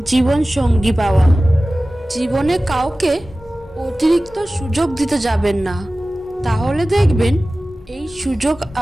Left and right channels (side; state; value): both; normal; correlation 0.97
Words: জীবন সঙ্গী পাওয়া। জীবনে কাউকে অতিরিক্ত সুযোগ দিতে যাবেন না, তাহলে দেখবেন এই সুযোগ